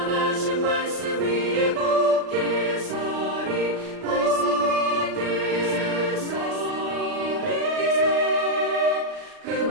말씀 위에 굳게 서리. 그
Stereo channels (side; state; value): left; late; 39 ms